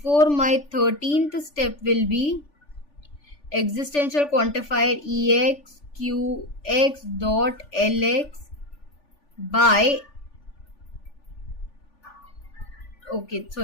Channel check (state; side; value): late; right; 3.4 ms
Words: my 13th step will be existential quantifier EX QX dot LX by